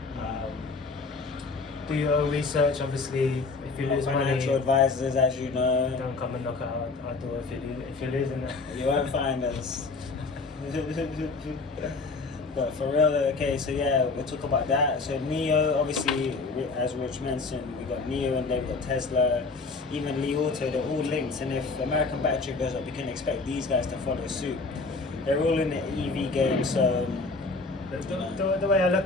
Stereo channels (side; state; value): right; quieter; 3.9 dB